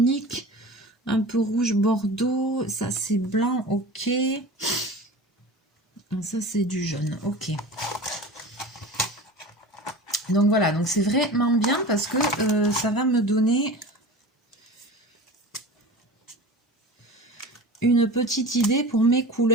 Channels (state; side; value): normal; both; correlation 0.35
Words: un peu rouge bordeaux. Ça, c'est blanc, ok. Ça, c'est du jaune, ok. Donc voilà, donc c'est vraiment bien parce que ça va me donner une petite idée pour mes